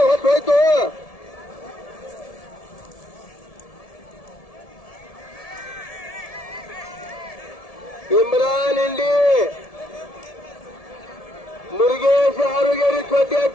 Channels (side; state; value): right; late; 1.7 ms